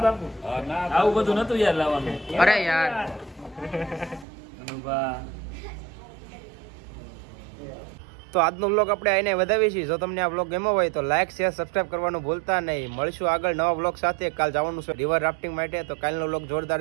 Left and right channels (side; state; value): left; drops out; at 4.2 s